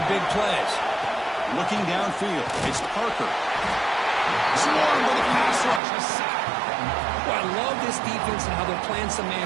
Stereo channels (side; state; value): left; drops out; at 5.8 s